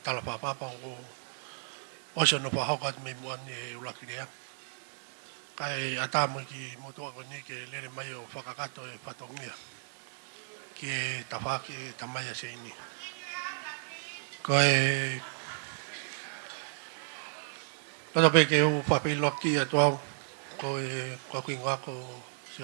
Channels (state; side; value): silent; left; digital silence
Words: talapapapa o se no whahoka me muan e ulakirea. Kai atamu ki motua koni ke lere mai o whakakato e whatongia. Ke tawhaki tamaya se ini. Kai Roto pe ke u whapi loki a tuau ko e kuingoa ko se